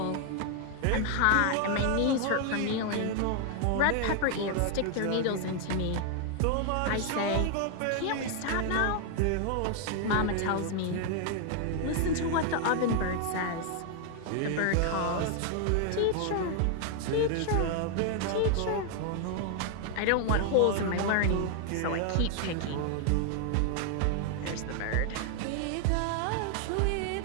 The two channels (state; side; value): different; both; correlation 0.00